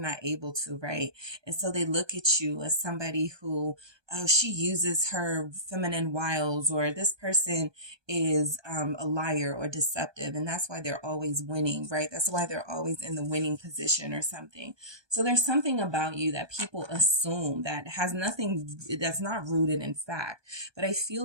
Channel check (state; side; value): late; left; 1.2 ms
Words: able to, right? And so they look at you as somebody who, oh, she uses her feminine wiles, or this person is a liar or deceptive, and that's why they're always winning, right? That's why they're always in the winning position or something. So there's something about you that people assume that has nothing, that's not rooted in fact. But I feel